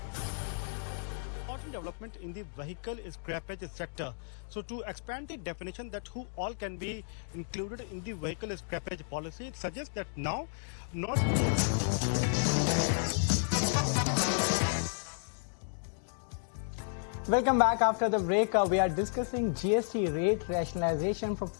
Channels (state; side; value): silent; right; digital silence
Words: important development in the vehicle scrappage sector. So to expand the definition that who all can be included in the vehicle scrappage policy, it suggests that now not Welcome back after the break. We are discussing GST rate rationalization from